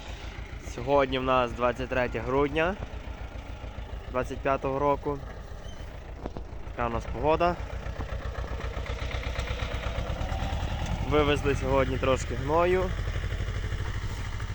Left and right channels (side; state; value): both; identical; correlation 1.00